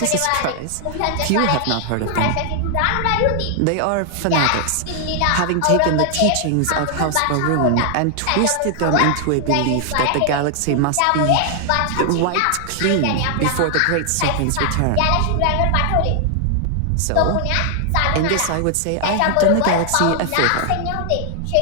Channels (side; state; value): both; different; correlation 0.00